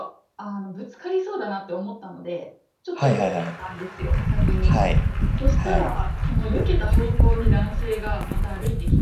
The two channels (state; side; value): identical; both; correlation 1.00